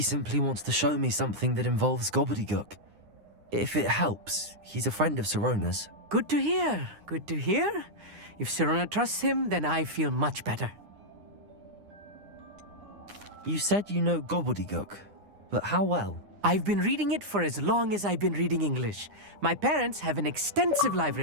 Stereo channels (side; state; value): left; late; 9.8 ms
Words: simply wants to show me something that involves gobbledygook. If it helps, he's a friend of Sirona's. Good to hear. Good to hear. If Sirona trusts him, then I feel much better. You said you know gobbledygook, but how well? I've been reading it for as long as I've been reading English. My parents have an extensive